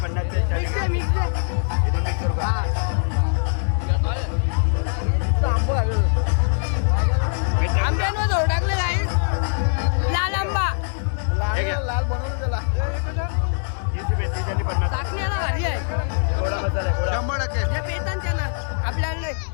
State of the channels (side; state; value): right; silent; digital silence